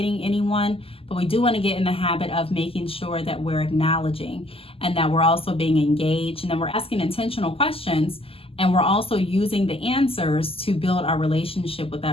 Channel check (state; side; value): late; right; 0.27 ms